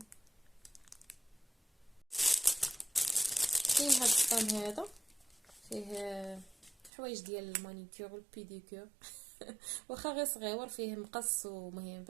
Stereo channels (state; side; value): drops out; left; at 6.9 s